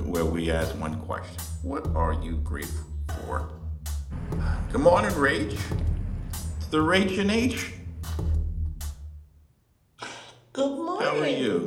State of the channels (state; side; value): identical; both; correlation 1.00